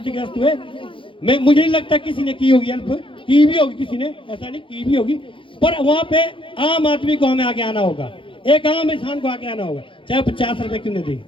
हुए, मुझे नहीं लगता किसी ने की होगी हेल्प, की भी होगी किसी ने, ऐसा नहीं की भी होगी, पर वहां पे आम आदमी को हमें आगे आना होगा, एक आम इंसान को आगे आना होगा, चाहे 50 रुपए क्यों नहीं दे।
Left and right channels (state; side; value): late; right; 0.25 ms